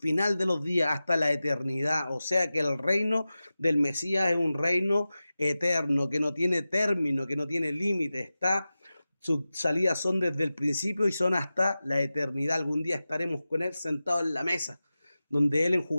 de los días, hasta la eternidad. O sea que el reino del Mesías es un reino eterno, que no tiene término, que no tiene límite. Sus salidas son desde el principio y son hasta la eternidad. Algún día estaremos con Él sentados en la mesa, donde Él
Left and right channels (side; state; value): both; inverted; correlation -0.95